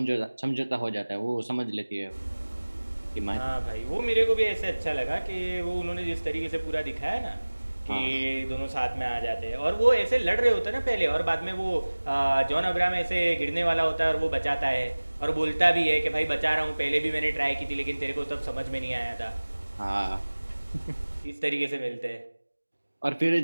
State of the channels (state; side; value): inverted; both; correlation -1.00